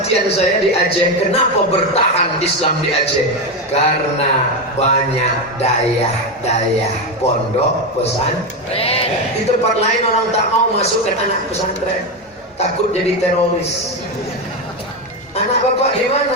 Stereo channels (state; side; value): normal; both; correlation 0.12